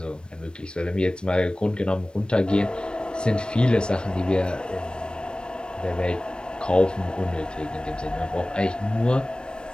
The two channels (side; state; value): right; late; 0.053 ms